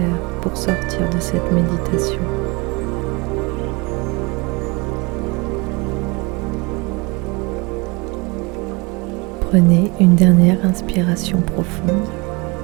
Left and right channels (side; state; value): left; quieter; 27.1 dB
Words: pour sortir de cette méditation. Prenez une dernière inspiration profonde